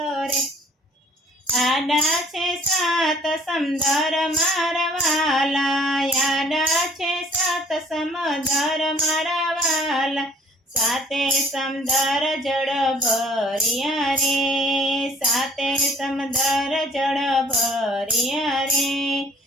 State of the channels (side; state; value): both; normal; correlation 0.56